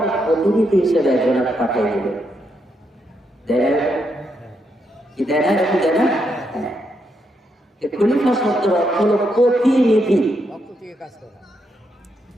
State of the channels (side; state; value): both; normal; correlation 0.80